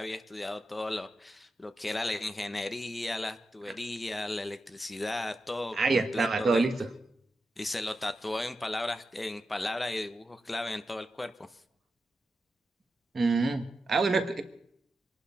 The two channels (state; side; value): normal; both; correlation 0.89